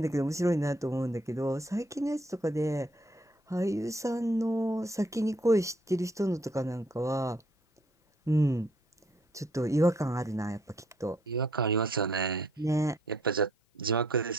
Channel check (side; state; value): both; normal; correlation 0.66